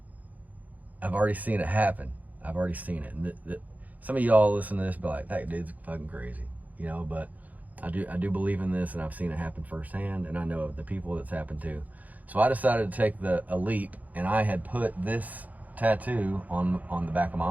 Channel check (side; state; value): left; late; 0.078 ms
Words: I've already seen it happen. I've already seen it. And some of y'all listen to this be like, that dude's fucking crazy, you know, but I do believe in this, and I've seen it happen firsthand, and I know of the people that's happened to. So I decided to take a leap, and I had put this tattoo on the back of my